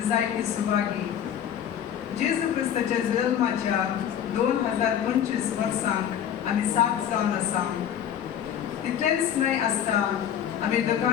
जायती सुभागी. जेजू क्रिस्ताच्या जल्माच्या 2025 वर्सांक आमी साथ जावन आसा. तितलेंच न्हय आसता आमी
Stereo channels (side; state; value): right; quieter; 9.5 dB